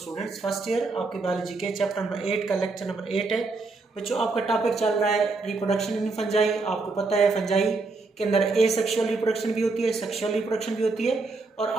first year आपके बायोलॉजी के चैप्टर नंबर 8 का लेक्चर नंबर 8 है। बच्चों आपका टॉपिक चल रहा है रिप्रोडक्शन इन फंजाई। आपको पता है फंजाई के अंदर एसेक्सुअल रिप्रोडक्शन भी होती है, सेक्सुअल रिप्रोडक्शन भी होती है, और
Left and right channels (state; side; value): quieter; left; 3.7 dB